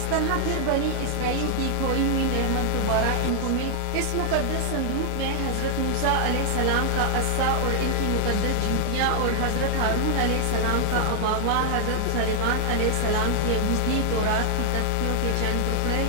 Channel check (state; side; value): different; both; correlation 0.00